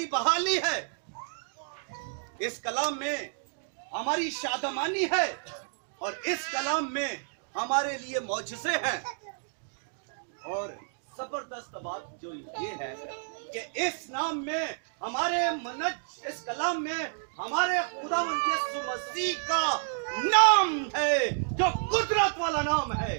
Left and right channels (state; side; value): silent; left; digital silence